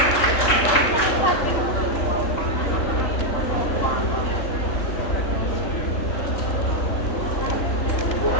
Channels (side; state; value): right; late; 3.7 ms